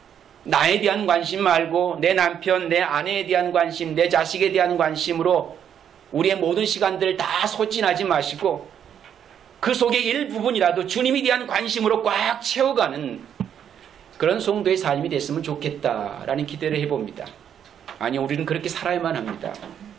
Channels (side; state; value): left; quieter; 8.9 dB